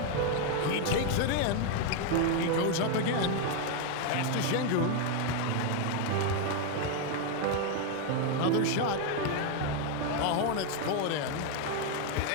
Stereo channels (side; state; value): both; different; correlation 0.01